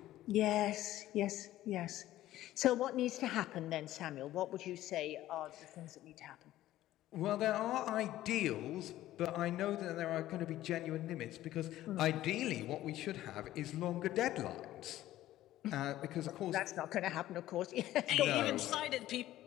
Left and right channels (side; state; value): right; quieter; 14.4 dB